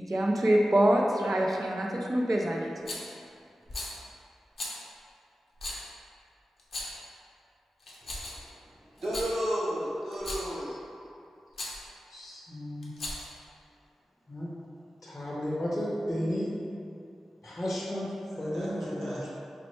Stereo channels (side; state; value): both; normal; correlation 0.94